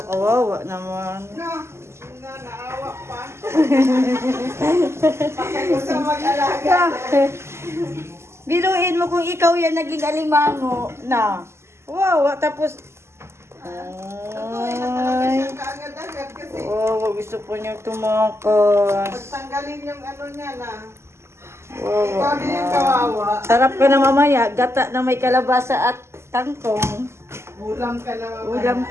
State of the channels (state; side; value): late; left; 0.13 ms